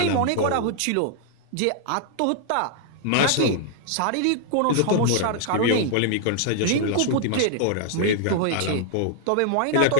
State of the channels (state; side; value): different; both; correlation -0.01